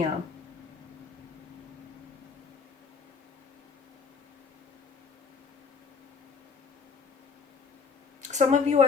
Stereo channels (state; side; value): quieter; right; 5.2 dB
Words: Some of you, I